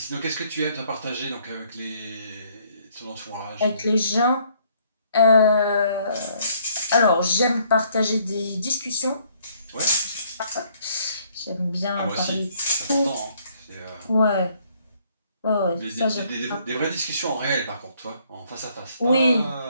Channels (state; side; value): inverted; both; correlation -0.65